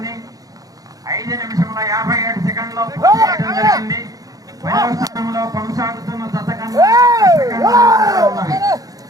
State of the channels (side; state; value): left; late; 0.17 ms